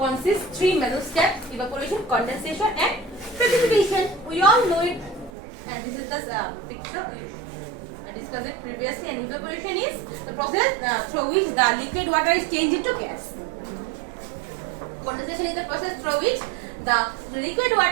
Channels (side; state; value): left; drops out; at 5.3 s